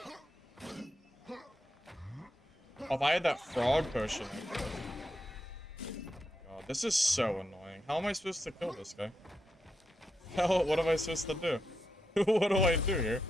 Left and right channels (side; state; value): both; normal; correlation 0.85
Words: Oh, if I had that frog potion, I could. God, this is so annoying. How am I supposed to kill this guy? What am I supposed to do? What do I do here?